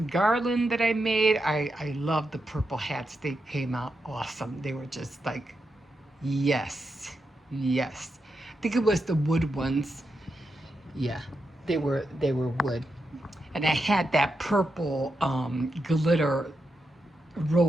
garland that I made. I love the purple hats. They came out awesome. They were just like, yes, yes. I think it was the wood ones. Yeah, they were wood. And I had that purple glitter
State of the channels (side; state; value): both; normal; correlation 0.86